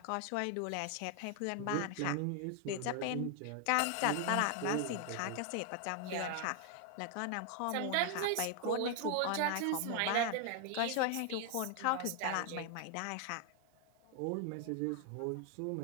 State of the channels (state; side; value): different; both; correlation 0.00